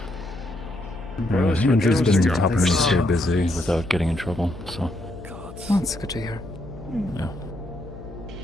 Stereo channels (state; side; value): noise; left; hum, 14 dB below the sound